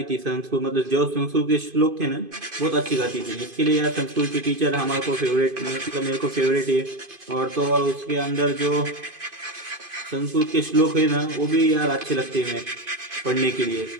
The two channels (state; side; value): late; left; 2.5 ms